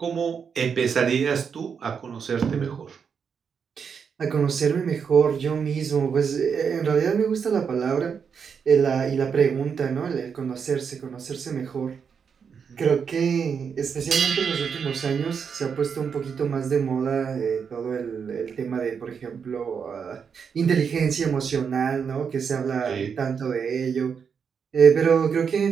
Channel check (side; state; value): left; quieter; 6.5 dB